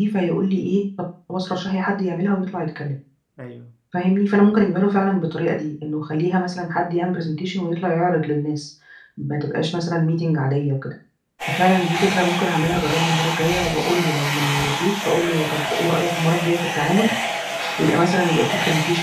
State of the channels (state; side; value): identical; both; correlation 1.00